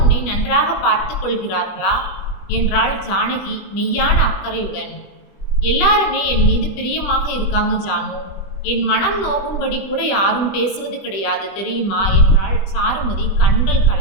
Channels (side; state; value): right; late; 20 ms